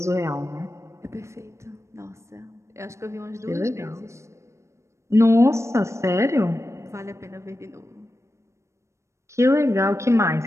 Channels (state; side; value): late; left; 0.14 ms